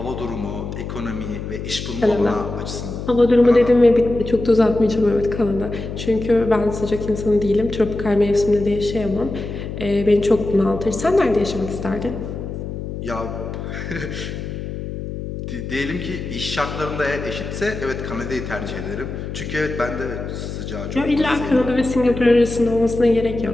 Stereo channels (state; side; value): noise; left; hum, 7 dB below the sound